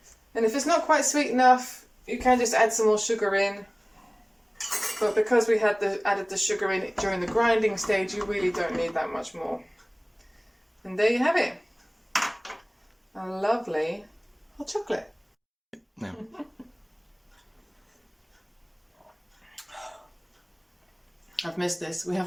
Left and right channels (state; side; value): identical; both; correlation 1.00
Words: And if it's not quite sweet enough, you can just add some more sugar in. But because we had added the sugar in during the grinding stage, you really don't need that much more. And there you have it. A lovely hot chocolate. No. I've missed this. We